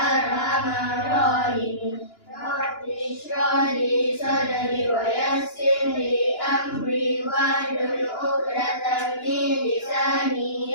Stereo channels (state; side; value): late; right; 2.9 ms